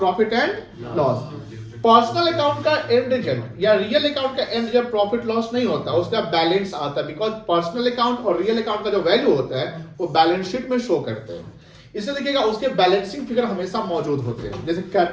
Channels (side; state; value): both; identical; correlation 1.00